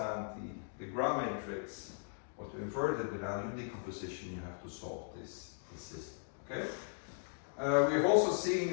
the Gram matrix, or to invert it without unit decomposition, you have to solve this system. Okay. We have also seen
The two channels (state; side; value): silent; right; digital silence